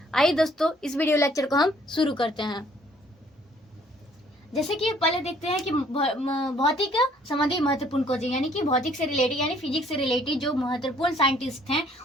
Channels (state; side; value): normal; both; correlation 0.61